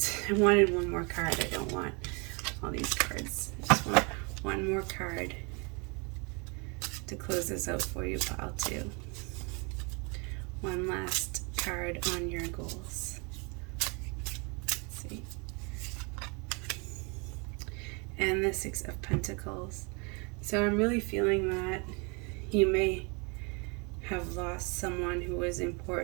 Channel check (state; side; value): quieter; left; 31.9 dB